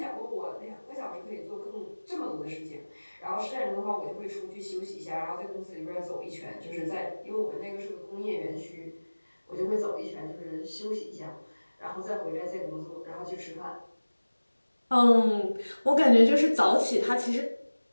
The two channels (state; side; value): inverted; both; correlation -1.00